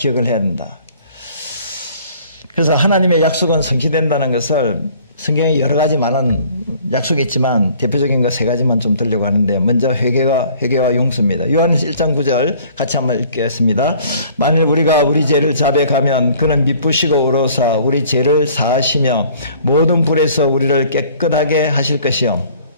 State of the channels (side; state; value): both; inverted; correlation -0.54